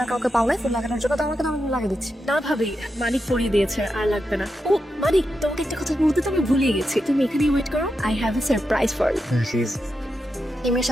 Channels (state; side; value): normal; both; correlation 0.87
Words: আর কাউকে পাওলাই ফুল লাগানোর জন্য? তো আমাকে তো আমি লাগিয়ে দিচ্ছি। না ভাবি, মানিক পরিয়ে দিয়েছে, আর লাগবে না। ও মানিক, তোমাকে একটা কথা বলতে তো আমি ভুলিয়ে গেছি। তুমি এখানেই ওয়েট করো, I have a surprise for you. এই মেয়ের